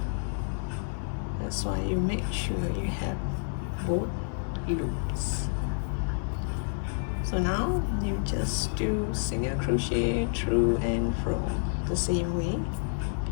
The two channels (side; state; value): right; silent; 58 dB below the other